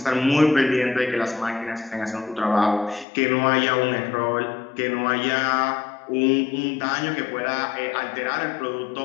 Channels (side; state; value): right; drops out; at 3.1 s